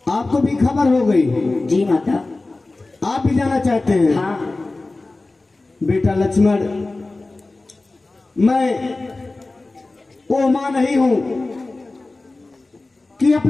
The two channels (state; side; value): quieter; right; 3.2 dB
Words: आपको भी खबर हो गई? जी माता। आप भी जाना चाहते हैं? हाँ। बेटा लक्ष्मण, मैं वो मां नहीं हूं कि